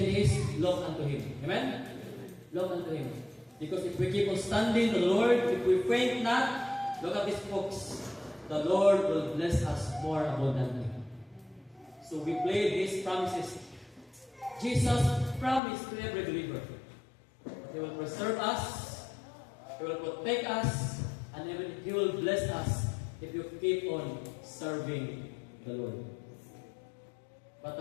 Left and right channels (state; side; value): drops out; right; at 15.6 s